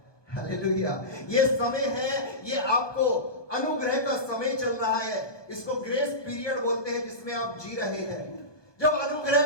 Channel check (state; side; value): late; right; 1.2 ms